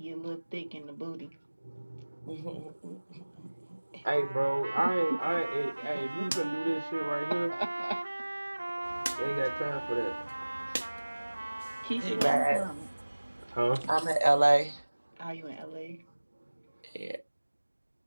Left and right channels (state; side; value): inverted; both; correlation -1.00